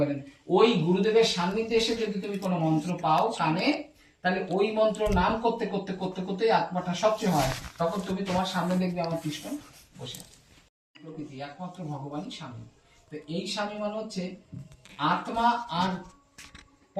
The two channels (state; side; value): identical; both; correlation 1.00